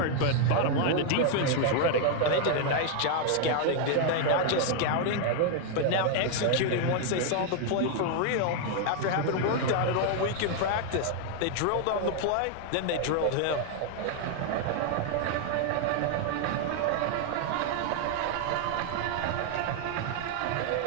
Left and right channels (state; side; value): different; both; correlation 0.00